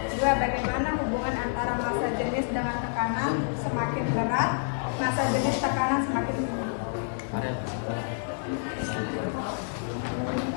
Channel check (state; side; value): silent; right; digital silence